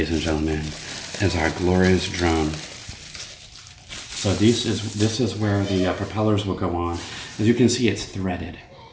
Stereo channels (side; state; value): both; identical; correlation 1.00